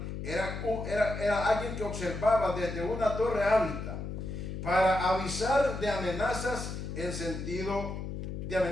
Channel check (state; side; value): noise; left; hum, 6 dB below the sound